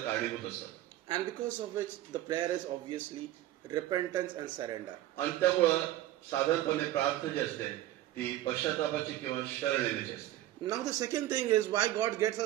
असतात. And because of which the prayer is obviously repentance and surrender. आणि त्यामुळं साधारणपणे प्रार्थना जी असते ती पश्चातापाची किंवा शरण येण्याची असते. Now the second thing is why God gets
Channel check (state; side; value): quieter; left; 14.4 dB